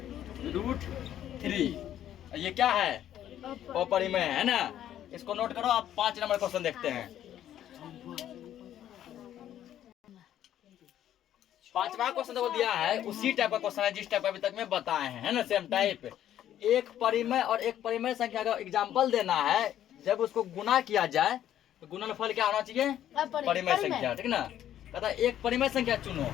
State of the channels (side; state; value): right; quieter; 11.3 dB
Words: ये क्या है, अपरिमेय है ना। इसको नोट करो। आप 5 नंबर क्वेश्चन देखते हैं। पांचवा क्वेश्चन जो दिया है उसी टाइप का क्वेश्चन है जिस टाइप अभी तक में बताए हैं, है ना, सेम टाइप। एक परिमेय और एक परिमेय संख्या का एग्जाम्पल देना है, जब उसको गुना किया जाए तो गुणनफल क्या होना चाहिए? परिमेय संख्या, ठीक ना। कहता है एक परिमेय संख्या चुनो